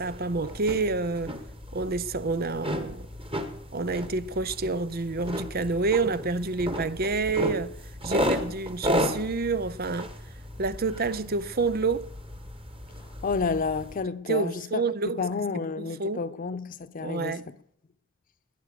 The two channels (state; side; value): normal; both; correlation 0.15